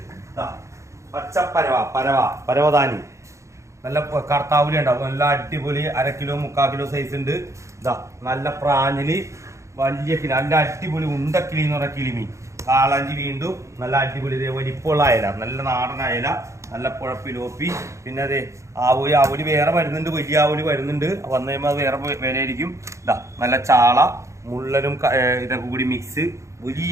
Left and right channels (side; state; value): left; late; 0.14 ms